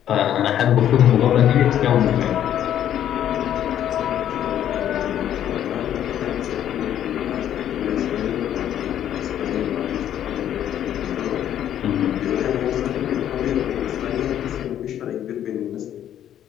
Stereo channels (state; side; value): quieter; right; 10.7 dB